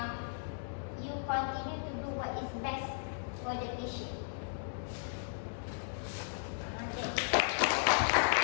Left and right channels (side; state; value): right; silent; digital silence